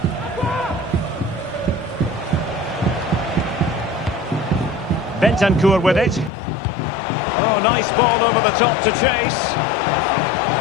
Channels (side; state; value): right; drops out; at 6.3 s